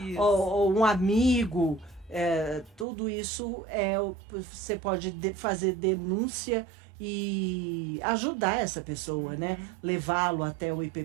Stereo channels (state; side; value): drops out; left; at 2.9 s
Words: ou um amigo. Tudo isso você pode fazer denúncia e ajudar essa pessoa, né? Levá-lo até o